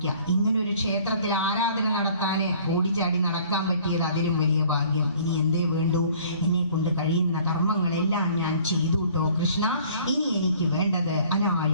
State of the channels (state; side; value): inverted; both; correlation -0.54